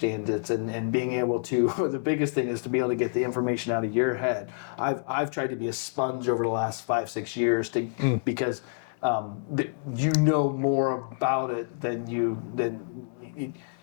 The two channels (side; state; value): right; silent; digital silence